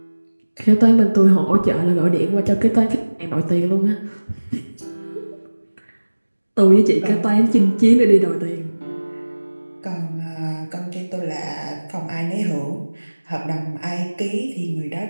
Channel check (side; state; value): both; inverted; correlation -1.00